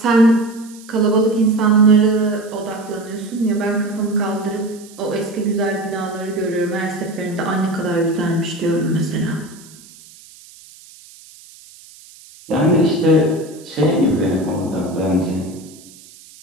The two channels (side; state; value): right; noise; hiss, 22 dB below the sound